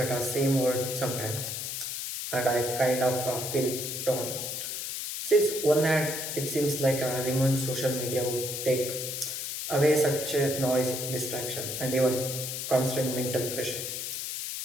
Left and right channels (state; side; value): noise; left; hiss, 4 dB below the sound